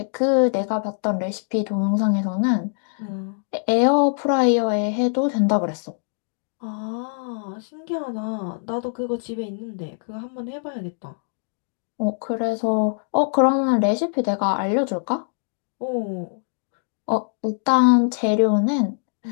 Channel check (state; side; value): silent; right; digital silence